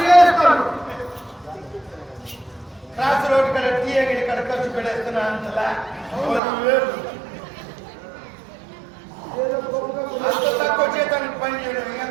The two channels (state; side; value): drops out; left; at 6.4 s